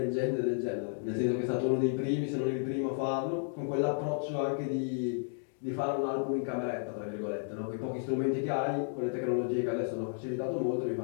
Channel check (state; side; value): silent; right; digital silence